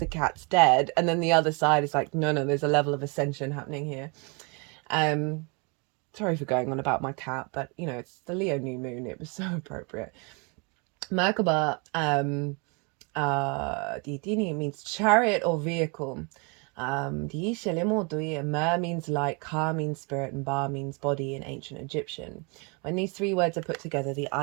cat's dead, and then the other side is like, no, there's a level of ascension happening here. Sorry for going on about my cat, but you know, it's the Leo new moon, it was so appropriate. Merkaba, Dini means chariot or vehicle. Mer means light, Ka means spirit, and Ba means body in ancient Egyptian. When these three words are put together, the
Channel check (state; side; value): quieter; left; 32.3 dB